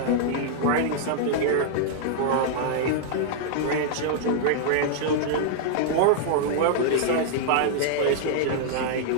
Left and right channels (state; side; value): different; both; correlation -0.01